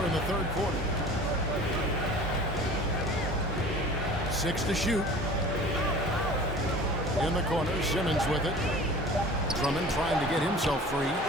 the third quarter. 6 to shoot. In the corner, Simmons with it. Drummond trying to get himself free.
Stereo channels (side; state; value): both; normal; correlation 0.43